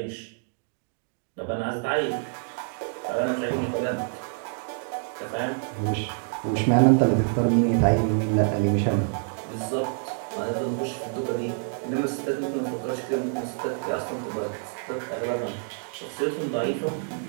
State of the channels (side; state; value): left; silent; 56 dB below the other